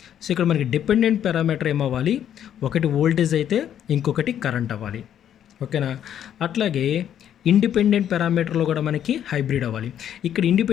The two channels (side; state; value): right; quieter; 10.0 dB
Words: సో ఇక్కడ మనకి డిపెండెంట్ పారామీటర్ ఏమవ్వాలి, ఒకటి వోల్టేజ్ అయితే ఇంకొకటి కరెంట్ అవ్వాలి, ఓకేనా. అట్లాగే ఇండిపెండెంట్ పారామీటర్లో కూడా మనకి హైబ్రిడ్ అవ్వాలి. ఇక్కడ